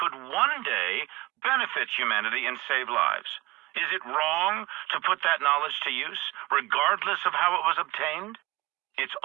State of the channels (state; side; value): quieter; left; 20.6 dB